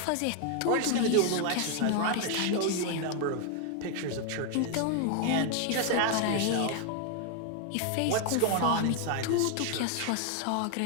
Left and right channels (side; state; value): both; different; correlation 0.00